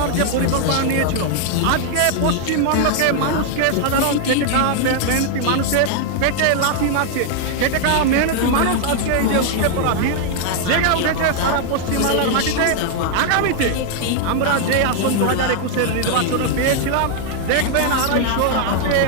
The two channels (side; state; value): both; different; correlation 0.00